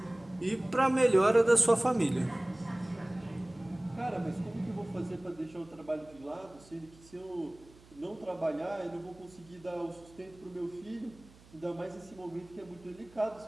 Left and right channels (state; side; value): noise; right; hum, 24 dB below the sound